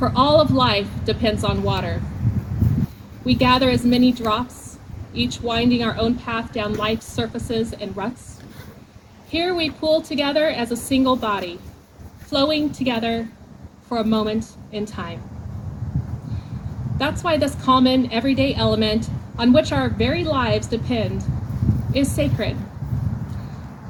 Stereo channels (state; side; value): identical; both; correlation 1.00